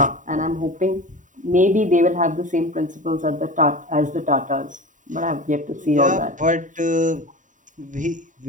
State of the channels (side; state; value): left; late; 0.37 ms